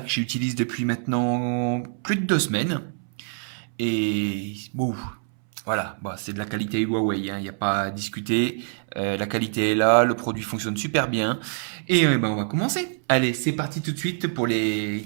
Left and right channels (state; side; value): silent; left; 60 dB below the other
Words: j'utilise depuis maintenant plus de 2 semaines. Et bon, voilà, bah, c'est de la qualité Huawei, hein, il n'y a pas à discuter. La qualité est là, le produit fonctionne super bien. Et bah, on va commencer. Allez, c'est parti tout de suite pour les